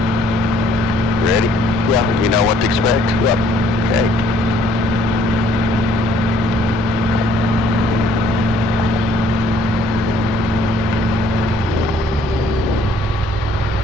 Ready? Yeah. You know what to expect? Yep. Okay.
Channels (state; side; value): normal; both; correlation 0.62